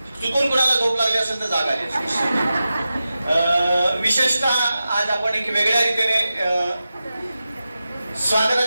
चुकून कुणाला झोप लागली असेल तर जागा आहे. विशेषतः आज आपण एक वेगळ्या रीतीने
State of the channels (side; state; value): both; inverted; correlation -0.93